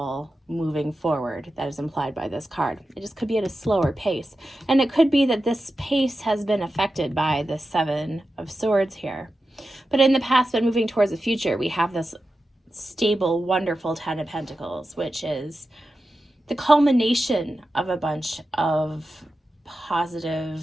moving forward that is implied by this card. It just could be at a slower pace. And it could be that this pace has been affected by the 7 of Swords here. But in the past, but moving towards the future, we have this stable, wonderful 10 of Pentacles, which is the culmination of a bunch of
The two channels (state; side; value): normal; both; correlation 0.92